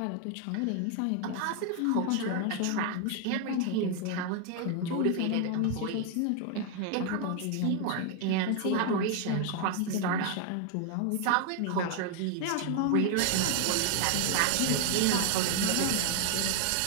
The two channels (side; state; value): both; different; correlation 0.00